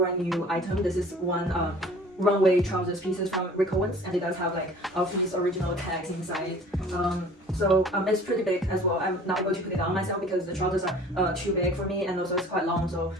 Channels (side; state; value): both; normal; correlation 0.47